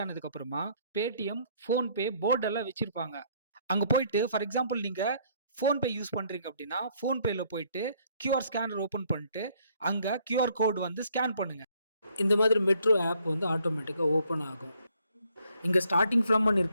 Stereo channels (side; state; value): both; inverted; correlation -0.66